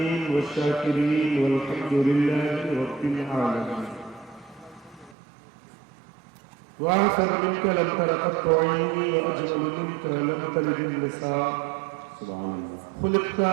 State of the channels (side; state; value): left; drops out; at 5.2 s